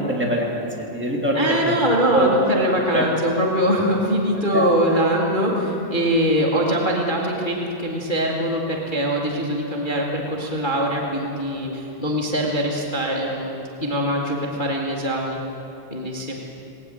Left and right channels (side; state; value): right; late; 2.3 ms